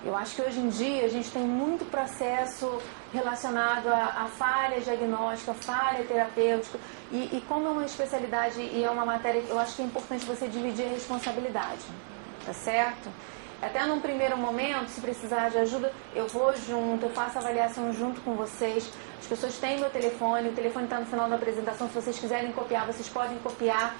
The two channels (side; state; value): left; silent; 57 dB below the other